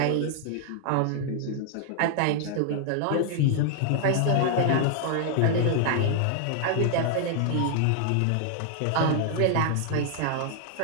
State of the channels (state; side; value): different; both; correlation 0.00